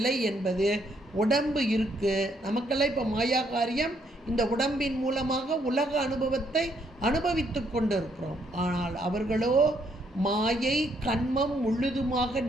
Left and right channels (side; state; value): both; normal; correlation 0.71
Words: என்பது உடம்பு இருக்குது நமக்கெல்லாம். இப்போ மாயா காரியம், இந்த உடம்பின் மூலமாக உலக அனுபவத்தை அனுபவித்து கொண்டு இருக்கிறோம். ஆனால் அவர்களோ மாயை கண்மம் முழுதுமாக